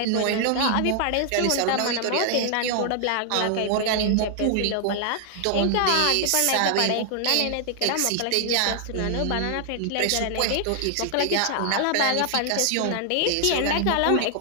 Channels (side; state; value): both; different; correlation 0.00